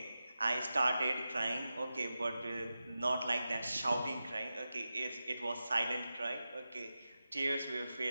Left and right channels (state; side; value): inverted; both; correlation -0.92